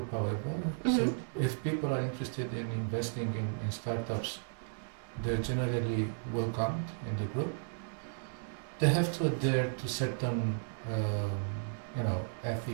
however. Mm-hmm. So if people are interested in investing in startups, they're generally welcomed in the group. They have to adhere to certain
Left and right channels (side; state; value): left; silent; 55 dB below the other